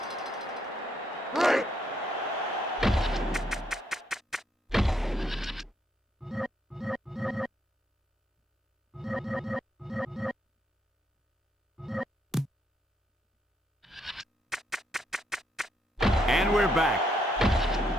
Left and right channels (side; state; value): both; normal; correlation 0.74